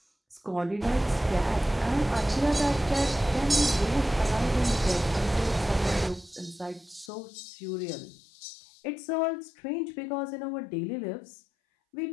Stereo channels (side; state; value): right; drops out; at 7.1 s